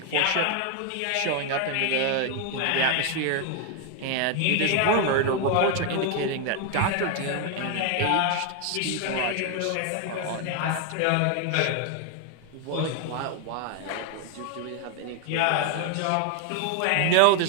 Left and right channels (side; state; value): both; different; correlation 0.01